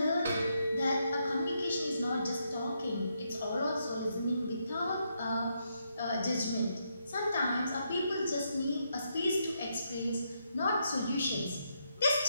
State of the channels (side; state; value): both; inverted; correlation -0.79